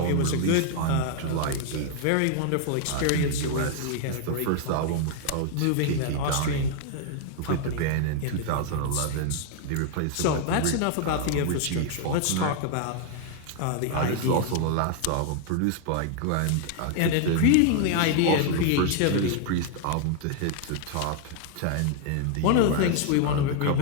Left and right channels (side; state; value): both; different; correlation 0.00